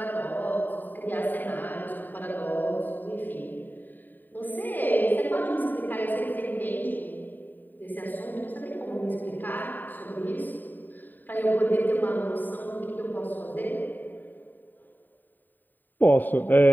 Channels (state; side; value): late; right; 0.089 ms